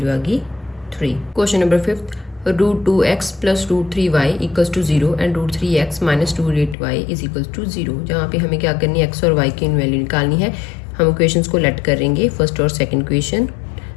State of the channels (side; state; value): right; drops out; at 6.8 s